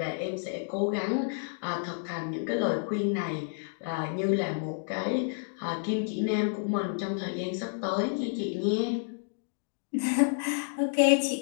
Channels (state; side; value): silent; right; digital silence